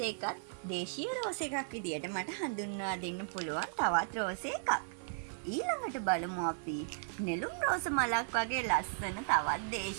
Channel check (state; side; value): silent; left; 54 dB below the other